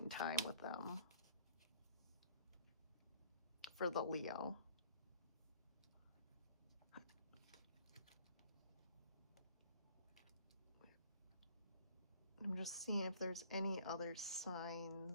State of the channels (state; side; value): inverted; both; correlation -0.54